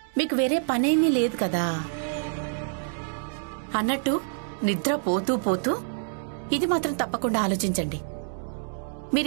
మీకు వేరే పనేమీ లేదు కదా. అన్నట్టు నిద్ర పోతూ పోతూ ఇది మాత్రం తప్పకుండా ఆలోచించండి.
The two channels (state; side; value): silent; left; digital silence